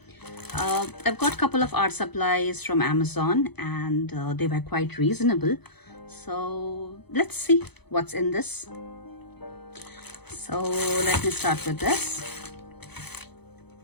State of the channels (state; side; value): late; right; 0.98 ms